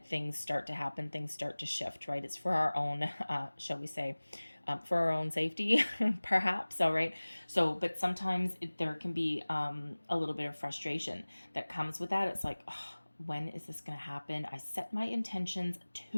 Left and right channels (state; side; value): inverted; both; correlation -1.00